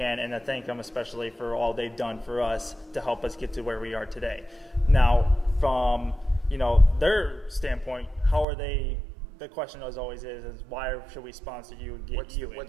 and to thank them especially for all they've done for us to help us get to where we are today. Now, from, you know, their standpoint, how are they? The question as always is why should we sponsor you and get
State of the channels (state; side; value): drops out; left; at 8.5 s